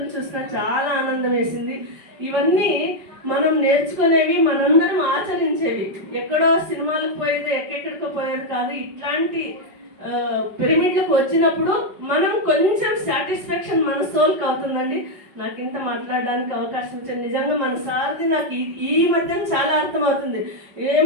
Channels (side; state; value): left; late; 5.2 ms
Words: చూసినా చాలా ఆనందం వేసింది. ఇవన్నీ మనం నేర్చుకునేవి, మనందరం ఆచరించేవి. ఎక్కడో సినిమాలకు పోయేది, ఎక్కడెక్కడికో పోయేది కాదు. ఇట్లాంటి పిరమిడ్లకు వచ్చినప్పుడు మనం కొంచెం సాటిస్ఫాక్షన్ మన సోల్కి అవుతుందండి. నాకు ఇంత మాట్లాడడానికి అవకాశం ఇచ్చాను. నిజంగా మన సార్ది నాకు ఈ మధ్యన చాలా అర్థమవుతుంది.